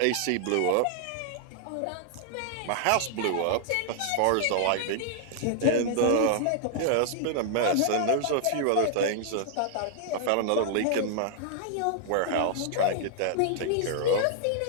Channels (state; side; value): different; both; correlation -0.01